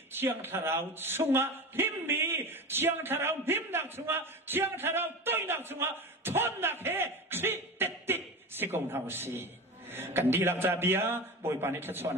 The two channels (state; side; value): normal; both; correlation 0.28